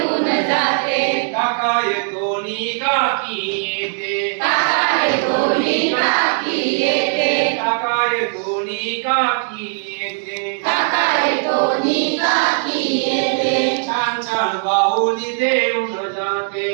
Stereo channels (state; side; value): silent; left; digital silence